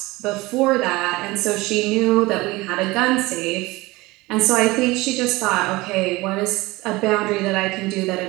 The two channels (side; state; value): left; quieter; 21.2 dB